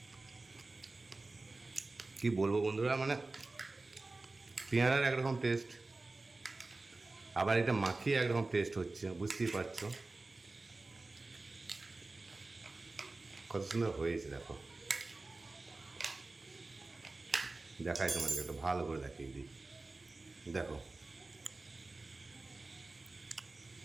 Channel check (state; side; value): quieter; left; 3.3 dB